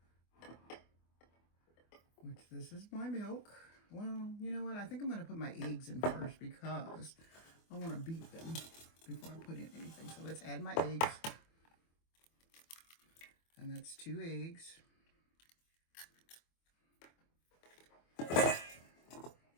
which this is my milk. Well, you know what? I think I'm going to put my eggs in first because I want to beat them before I put in anything. So let's add my eggs. And that's 2 eggs.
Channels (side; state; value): right; late; 24 ms